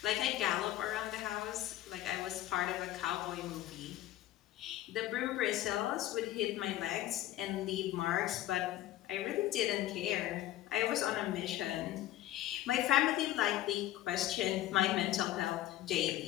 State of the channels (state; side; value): quieter; right; 14.2 dB